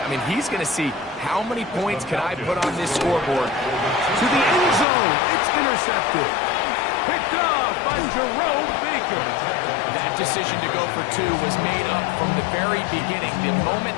I mean, he's going to see how many points can I put on this scoreboard. To the end zone. It's intercepted. Picked off by Jerome Baker. That decision to go for 2 was made up from the very beginning. The moment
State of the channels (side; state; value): right; drops out; at 4.9 s